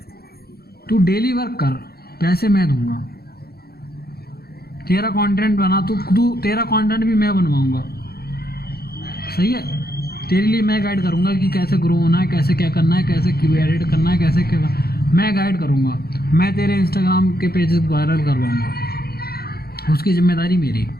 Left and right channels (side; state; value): right; late; 0.45 ms